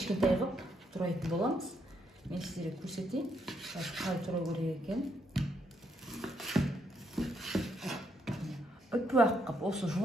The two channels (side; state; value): both; normal; correlation 0.75